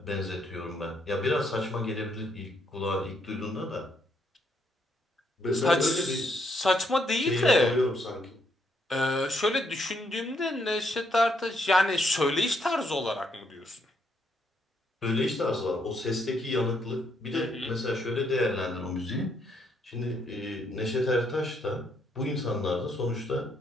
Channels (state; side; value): normal; both; correlation 0.74